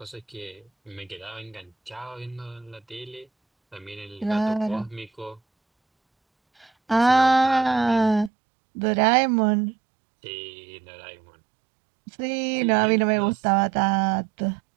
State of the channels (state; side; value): drops out; left; at 8.3 s